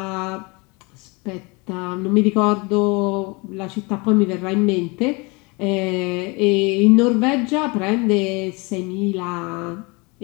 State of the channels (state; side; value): quieter; right; 27.8 dB